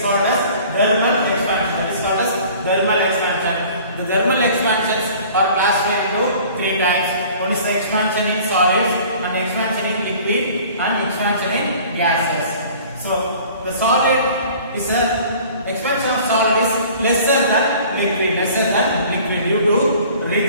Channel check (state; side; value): inverted; both; correlation -0.48